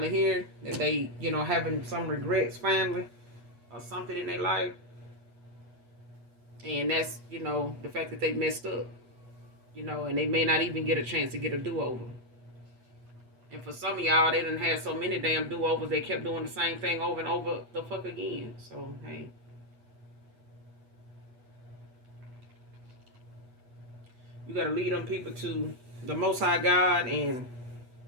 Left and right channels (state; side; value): late; left; 8.2 ms